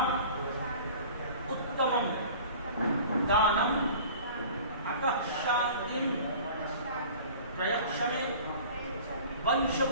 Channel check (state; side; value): inverted; both; correlation -0.43